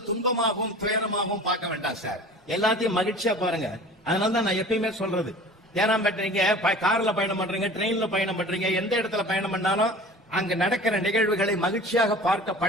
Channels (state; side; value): normal; both; correlation 0.42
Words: துன்பமாகவும் துயரமாகவும் பார்க்க வேண்டாம் சார், எல்லாத்தையும் மகிழ்ச்சியா பாருங்க. அதனாலதான் நான் எப்பயுமே சொல்றது, ஏன்னா பண்றீங்க கார்ல பயணம் பண்றீங்க, ட்ரெயின்ல பயணம் பண்றீங்க, எந்த இடத்துல பயணம் பண்ணாலும் அங்க நடக்கிற நிகழ்வுகளை மகிழ்ச்சியாக பார்க்க